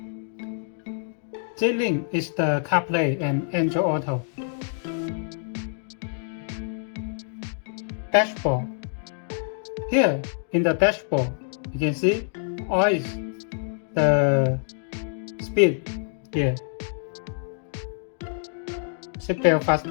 J-Link is the CarPlay and Android Auto. Dashboard. Here in the dashboard, you can see always the speed here. Seatbelt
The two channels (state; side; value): silent; right; digital silence